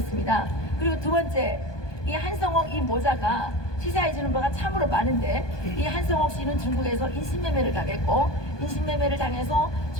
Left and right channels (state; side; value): late; right; 1.2 ms